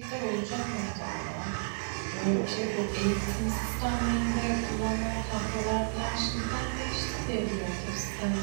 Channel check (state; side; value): silent; left; digital silence